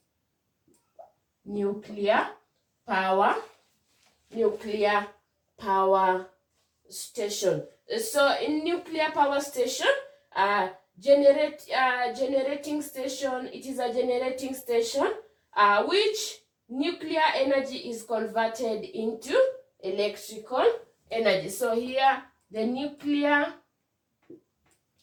nuclear power station. So in nuclear power station, generating station, it is a generating station which nuclear energy is converted into electrical energy. So here the nuclear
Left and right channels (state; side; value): identical; both; correlation 1.00